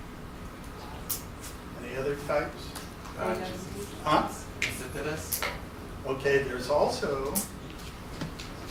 Any other types? Huh? Insipidus. Okay, there's also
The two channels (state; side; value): identical; both; correlation 1.00